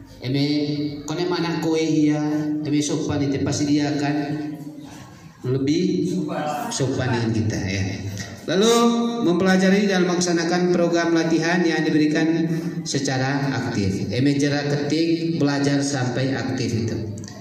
Kone mana kowe ya? Sopan itu pasti dia akan lebih sopan dengan kita ya. Lalu mempelajari dan melaksanakan program latihan yang diberikan secara aktif. Jarak ketik belajar sampai aktif itu.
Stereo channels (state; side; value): identical; both; correlation 1.00